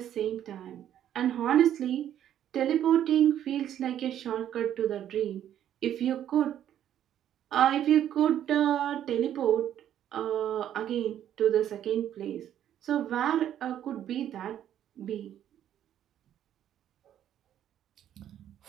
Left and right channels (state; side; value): quieter; left; 10.8 dB